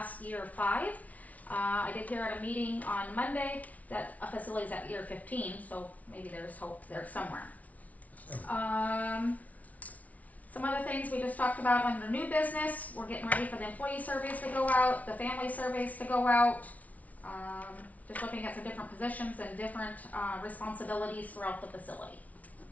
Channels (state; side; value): late; right; 0.070 ms